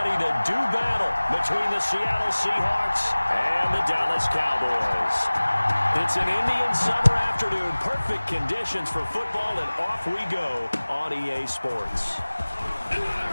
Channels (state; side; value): inverted; both; correlation -1.00